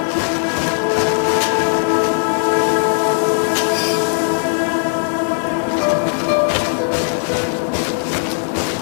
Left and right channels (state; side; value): silent; right; digital silence